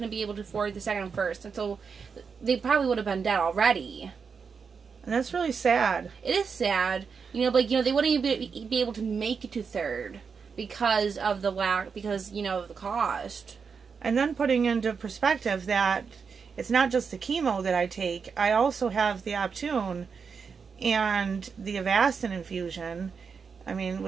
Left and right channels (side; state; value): left; quieter; 5.8 dB